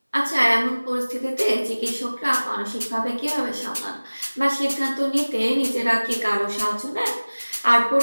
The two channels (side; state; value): both; inverted; correlation -1.00